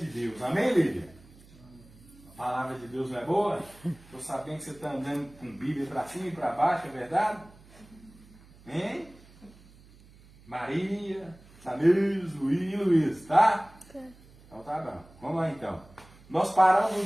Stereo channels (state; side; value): noise; right; hum, 24 dB below the sound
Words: Deus. Amém, Lídia? A palavra de Deus não é boa? Estou sabendo que você está andando com Bíblia para cima e para baixo, é verdade? Hein? Maria, Samir, Luiz, tá? Então tá bom. Vamos lá então. Nós paramos no